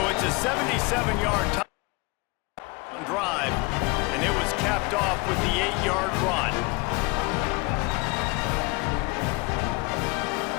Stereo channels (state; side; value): quieter; right; 26.5 dB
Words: it's a 77-yard touchdown drive, and it was capped off with the 8-yard run.